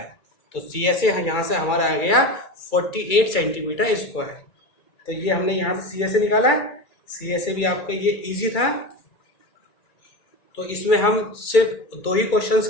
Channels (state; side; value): late; right; 2.3 ms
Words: तो CSA यहाँ से हमारा आ गया 48 सेंटीमीटर स्क्वायर। तो ये हमने यहाँ से CSA निकाला। CSA भी आपका ये इजी था। तो इसमें हम सिर्फ 2 ही